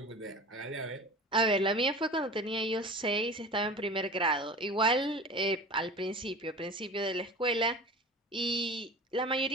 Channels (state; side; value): normal; both; correlation 0.36